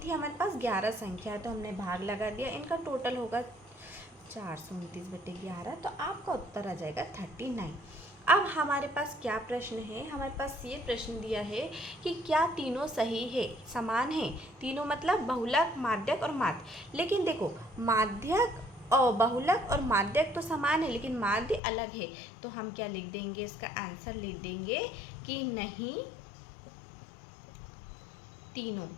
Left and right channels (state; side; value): drops out; right; at 21.6 s